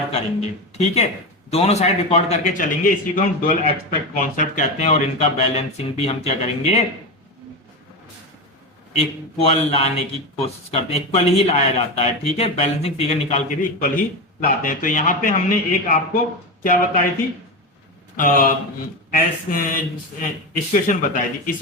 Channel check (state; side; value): normal; both; correlation 0.18